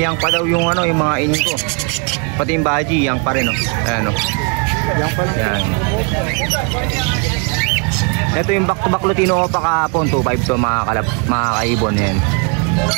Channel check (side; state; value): left; quieter; 36.2 dB